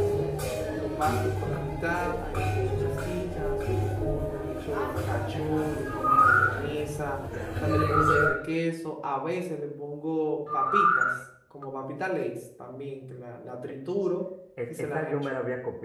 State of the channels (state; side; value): identical; both; correlation 1.00